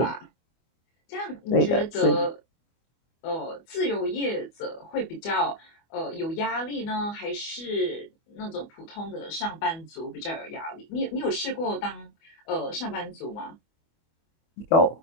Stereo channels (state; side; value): late; right; 24 ms